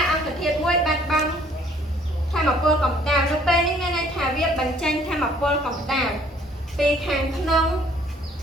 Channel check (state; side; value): normal; both; correlation 0.59